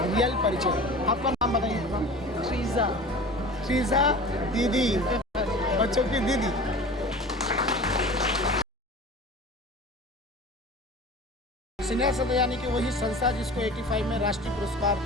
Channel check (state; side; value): normal; both; correlation 0.37